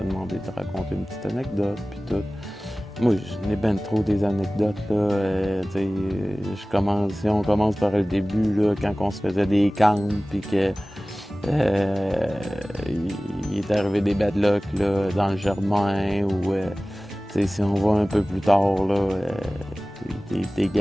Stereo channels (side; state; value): both; normal; correlation 0.98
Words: demandé de raconter une petite anecdote, puis tout. Moi, je n'ai ben trop des anecdotes, là. Si on commence par le début, là, quand on se faisait des camps, puis que il est arrivé des bad luck là, dans le Germain, ou si on va un peu plus tard, là, des